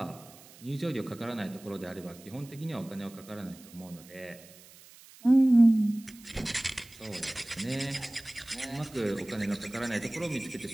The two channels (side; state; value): right; noise; hiss, 22 dB below the sound